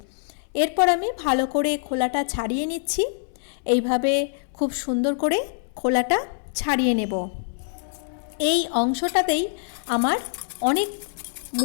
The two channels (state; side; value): silent; right; 62 dB below the other